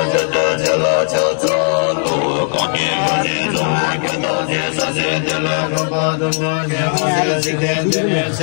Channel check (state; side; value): silent; right; 59 dB below the other